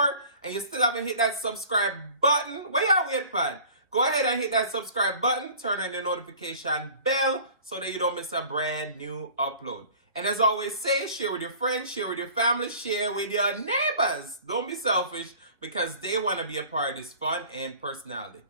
and you still haven't hit that subscribe button, where y'all wait for? Go ahead and hit that subscribe button, turn on the notification bell, so that you don't miss a brand new upload. And as always say, share with your friends, share with your family, share with your neighbors. Don't be selfish, because they want to be a part of this fun and personality.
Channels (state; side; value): inverted; both; correlation -0.46